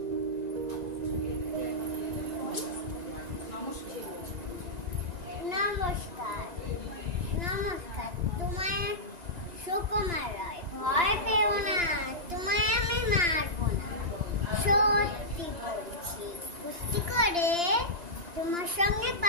নমস্কার, নমস্কার। তোমায় সুকুমার রয়। ভয় পেও না, তোমায় আমি মারবো না, সত্যি বলছি। কুস্তি করে তোমার সঙ্গে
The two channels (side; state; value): left; late; 1.9 ms